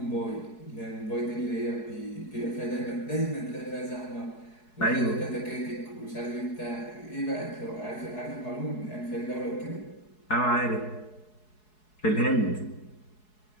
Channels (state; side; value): late; right; 4.7 ms